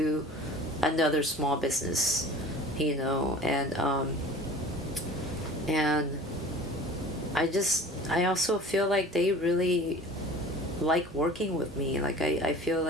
another small business, you know, and I also feel like they really like working with me. Like I feel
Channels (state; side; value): normal; both; correlation 0.43